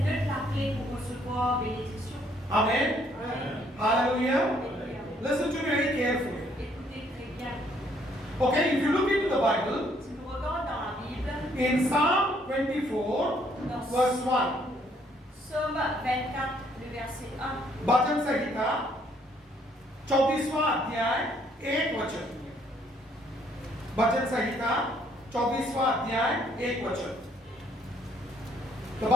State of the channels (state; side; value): normal; both; correlation 0.66